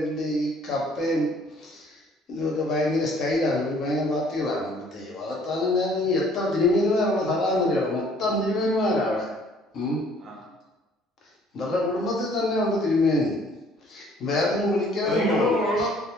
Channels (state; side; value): normal; both; correlation 0.58